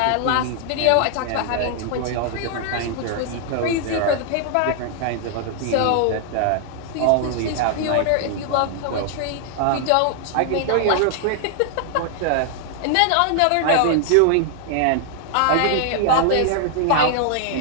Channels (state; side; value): different; both; correlation 0.00